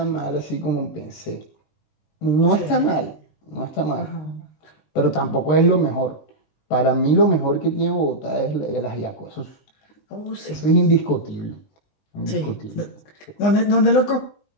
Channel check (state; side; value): late; right; 20 ms